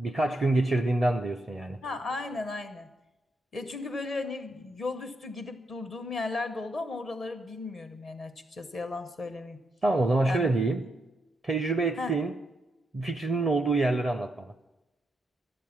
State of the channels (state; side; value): normal; both; correlation 0.81